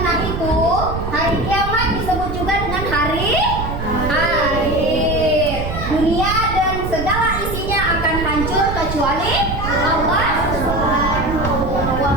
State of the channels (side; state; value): right; noise; rumble, 5 dB below the sound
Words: itu, hari kiamat disebut juga dengan hari